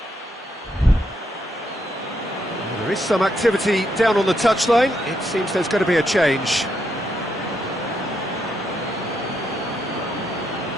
There is some activity down on the touchline. It seems there's going to be a change.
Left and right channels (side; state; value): both; normal; correlation 0.78